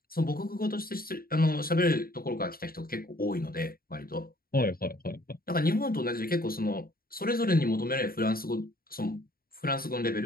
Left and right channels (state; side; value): late; right; 0.43 ms